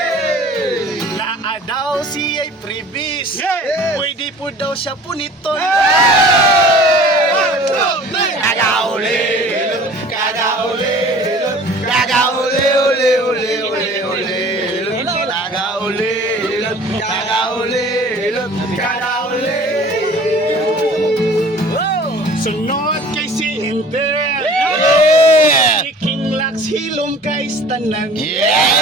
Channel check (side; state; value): both; normal; correlation 0.47